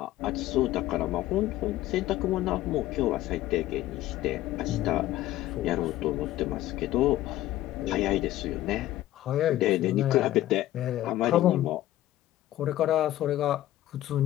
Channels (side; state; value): right; quieter; 14.6 dB